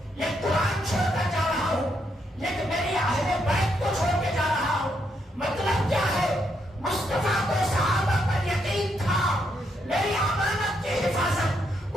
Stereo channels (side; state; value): both; normal; correlation 0.77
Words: یہ قرآن چھوڑ کر جا رہا ہوں، یہ میری اہل بیت کو چھوڑ کے جا رہا ہوں۔ مطلب کیا ہے؟ مصطفیٰ کو صحابہ پر یقین تھا، میری امانت کی حفاظت